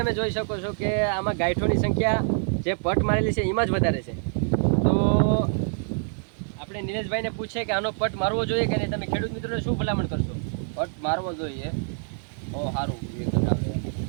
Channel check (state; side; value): silent; left; 61 dB below the other